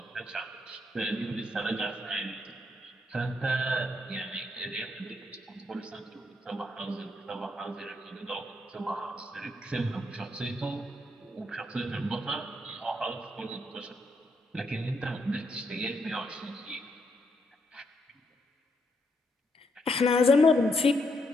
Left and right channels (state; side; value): normal; both; correlation 0.77